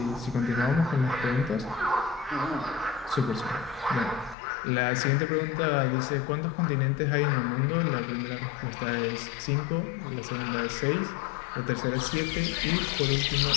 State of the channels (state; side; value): drops out; right; at 4.4 s